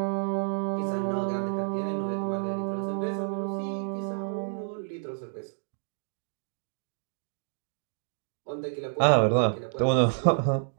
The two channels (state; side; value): silent; left; digital silence